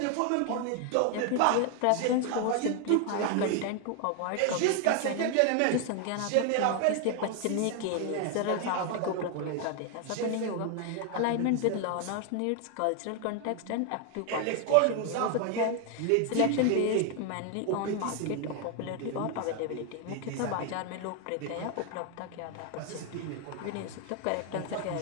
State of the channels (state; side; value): different; both; correlation 0.01